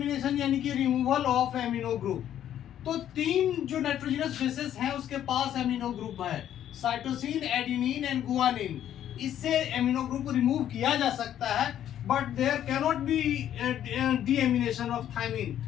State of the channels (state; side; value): quieter; right; 10.8 dB